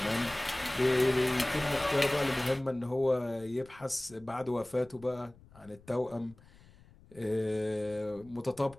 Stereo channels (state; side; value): noise; left; rumble, 24 dB below the sound